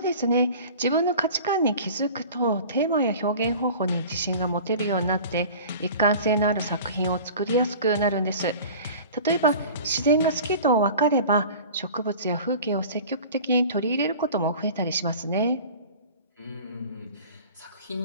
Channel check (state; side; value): inverted; both; correlation -0.40